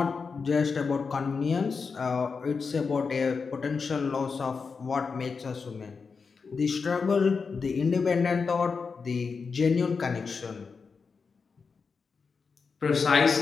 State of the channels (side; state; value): right; quieter; 5.1 dB